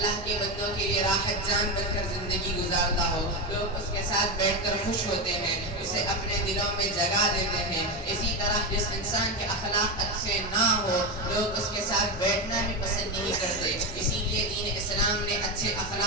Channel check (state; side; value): normal; both; correlation 0.13